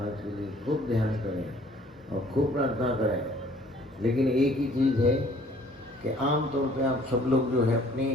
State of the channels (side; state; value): both; normal; correlation 0.57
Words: के लिए खूब ध्यान करें और खूब प्रार्थना करें। लेकिन एक ही चीज़ है कि आम तौर पे आप सब लोग जो है अपनी